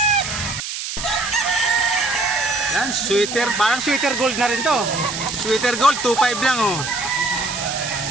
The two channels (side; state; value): right; noise; hiss, 6 dB below the sound